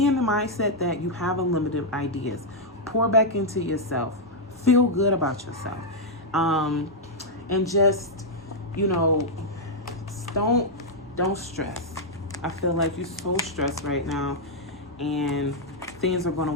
in the mindset that you have unlimited ideas. Pour back into yourself. Feel good about yourself. And just, don't stress. I feel like you're so stressed right now, and things are going to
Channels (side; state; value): both; normal; correlation -0.05